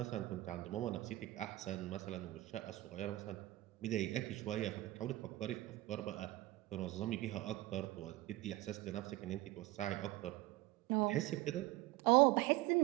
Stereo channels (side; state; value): left; quieter; 18.1 dB